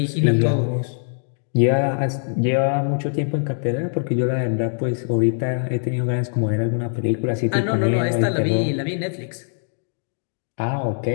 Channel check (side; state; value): right; silent; digital silence